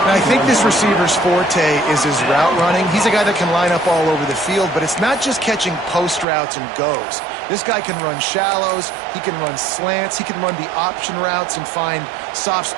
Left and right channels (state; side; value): drops out; left; at 6.2 s